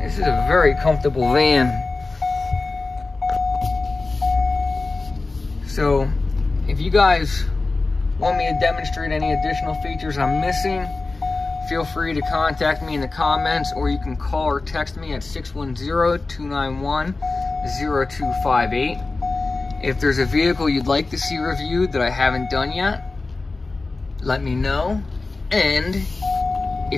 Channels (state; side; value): quieter; right; 3.6 dB